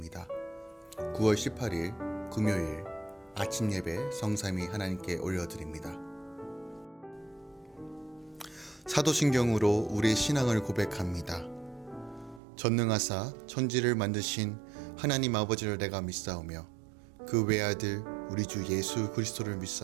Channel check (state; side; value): drops out; left; at 12.4 s